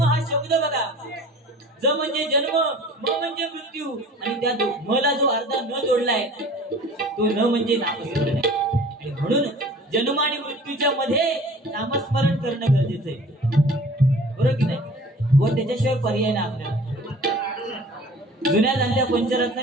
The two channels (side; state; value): both; normal; correlation 0.45